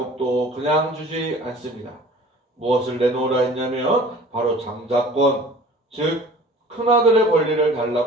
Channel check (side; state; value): both; normal; correlation 0.46